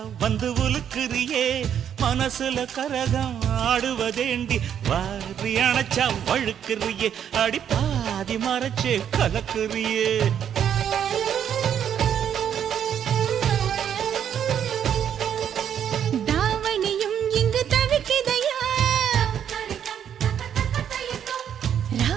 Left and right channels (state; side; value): quieter; left; 9.0 dB